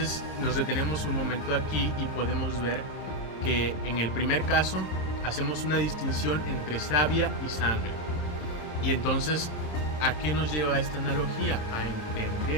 nos detenemos un momento aquí y podemos ver que en el primer caso hacemos una distinción entre savia y sangre. Y entonces, ¿a qué nos lleva esta analogía? A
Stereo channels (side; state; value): right; late; 26 ms